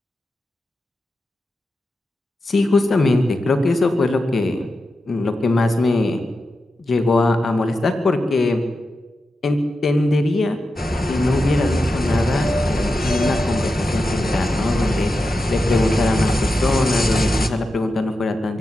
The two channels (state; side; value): normal; both; correlation 0.90